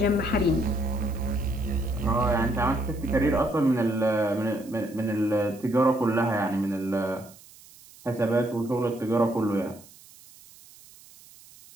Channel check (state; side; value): noise; right; hiss, 23 dB below the sound